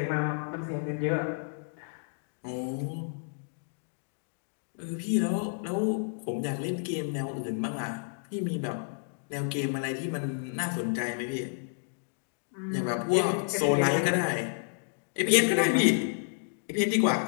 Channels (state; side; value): silent; right; digital silence